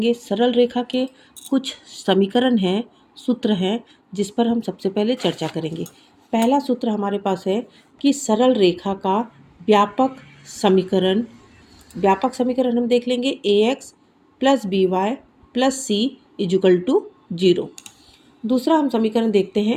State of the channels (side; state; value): both; identical; correlation 1.00